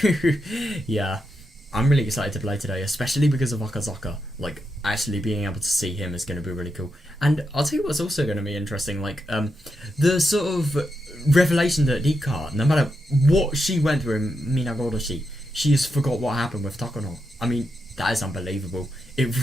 Yeah, I'm really excited to play today, especially because of Akazaka. Like, actually being able to see him is going to be really cool. And I'll tell you what's also going to be interesting, like, the sort of revelation that Rika, no matter what she went through in Minagodoshi, she has forgot what happened with Takano. I mean, that is unbelievable.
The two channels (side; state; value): both; normal; correlation 0.85